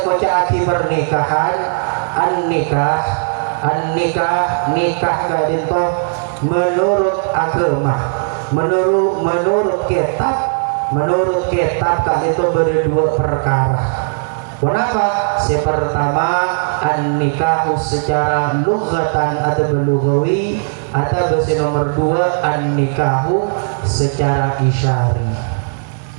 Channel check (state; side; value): silent; left; digital silence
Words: kocaki pernikahan? Nikah kadin toh menurut agama, menurut kitab kadin toh berdua perkara. Kenapa? Pertama an-nikahu secara lughatan atau lughawi, atau bahasa nomor dua an-nikahu secara isyari.